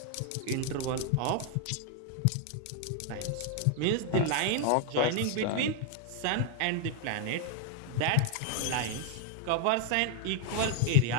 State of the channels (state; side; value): different; both; correlation 0.00